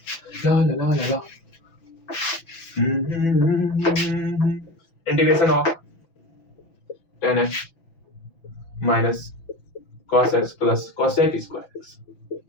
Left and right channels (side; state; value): right; late; 6.0 ms